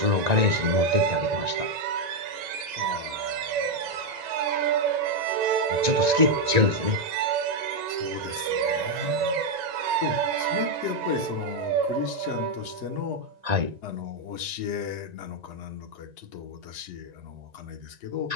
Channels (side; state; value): left; late; 1.9 ms